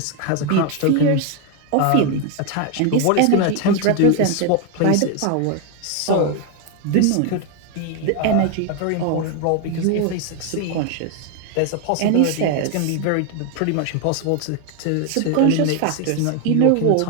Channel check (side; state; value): both; different; correlation 0.01